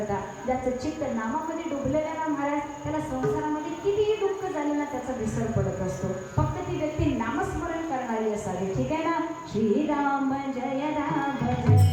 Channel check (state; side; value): identical; both; correlation 1.00